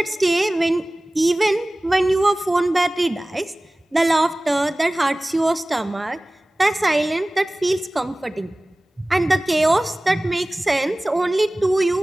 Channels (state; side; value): normal; both; correlation 0.98